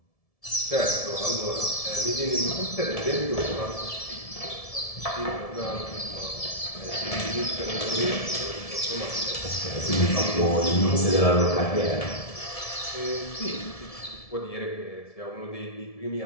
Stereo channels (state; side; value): late; right; 1.7 ms